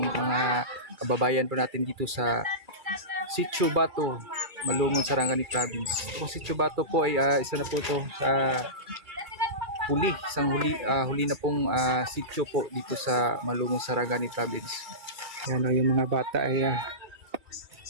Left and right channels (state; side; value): late; left; 2.3 ms